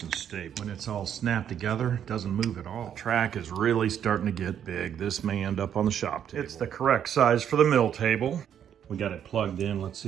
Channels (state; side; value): quieter; left; 9.2 dB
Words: and stable. When it's all snapped together, it doesn't move at all. The track is really starting to get big. This may end up on the shop table. It's the correct size for the mill table. We got it plugged in. Let's